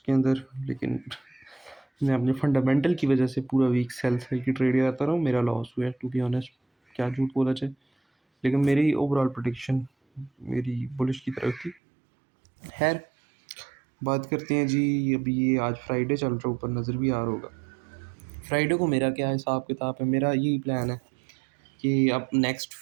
अंदर, लेकिन मैं अपने फंडामेंटल की वजह से पूरा वीक सेल सेल की ट्रेड करता रहा हूँ। मेरा लॉस हुआ है, टू बी ऑनेस्ट, क्या झूठ बोला जाए, लेकिन मेरी ओवरऑल प्रेडिक्शन मेरी बुलिश की तरफ थी। खैर, बात करते हैं जी। अभी ये आज फ्राइडे चल रहा है, ऊपर नज़र भी आ रहा होगा। फ्राइडे को मेरा क्या हिसाब किताब है, मेरा यही प्लान है कि अब नेक्स्ट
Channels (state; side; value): drops out; left; at 11.8 s